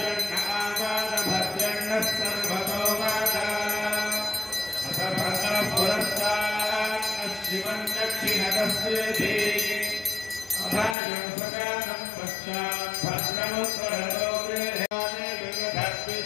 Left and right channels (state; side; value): drops out; right; at 11.0 s